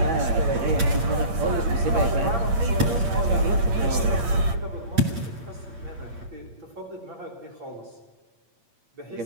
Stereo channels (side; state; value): left; late; 8.7 ms